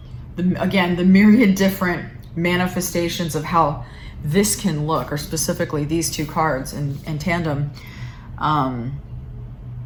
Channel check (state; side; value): identical; both; correlation 1.00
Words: again, the myriad different manifestations of how this can look, or specifically these two cards in tandem,